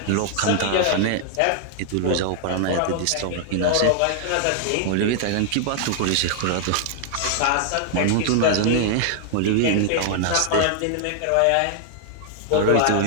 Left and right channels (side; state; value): both; different; correlation -0.01